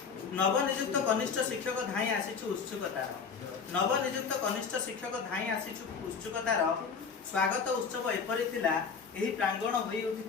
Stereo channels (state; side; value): quieter; right; 5.7 dB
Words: नवनियुक्त कनिष्ठ शिक्षक धाई आसीचु उत्सुकतार। नवनियुक्त कनिष्ठ शिक्षक धाई आसीचु उत्सुकतार स्वागत उत्सव एपरी थिला। एही प्रांगण होई